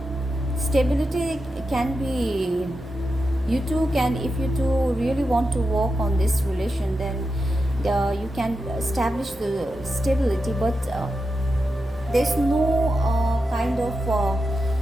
stability. Can be you two can, if you two really want to work on this relation, then you can establish the stability, but there's no kind of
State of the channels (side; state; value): both; normal; correlation 0.89